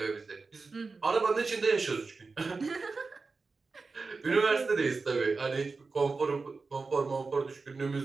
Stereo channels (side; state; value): left; quieter; 4.2 dB